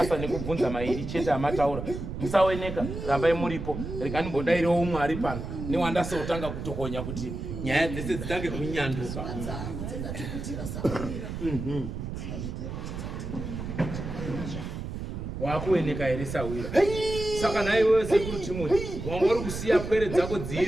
nekubvunza mairi chete amataura. Musaoneka, rambai muripo. Rekanibodairewo umwe ari pano. Newandasotanga kutokonya kuti nyaya dzese dzitange kunyanduka. Wakuoneka here sawira. Saka naiwe sekuru Timothy, wanga uri kusiya pwere dzako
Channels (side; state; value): right; noise; rumble, 6 dB below the sound